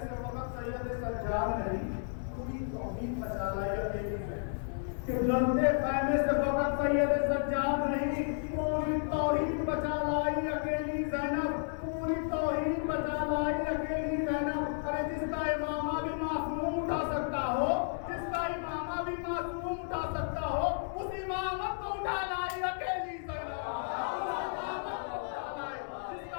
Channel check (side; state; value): right; silent; digital silence